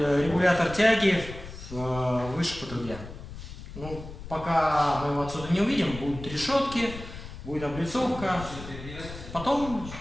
тяги выше по трубе. Ну, пока мы его отсюда не увидим, будут решетки, будет облицовка. Потом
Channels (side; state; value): left; noise; rumble, 12 dB below the sound